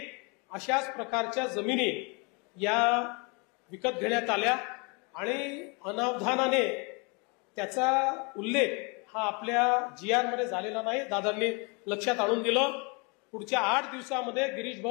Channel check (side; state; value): right; quieter; 31.7 dB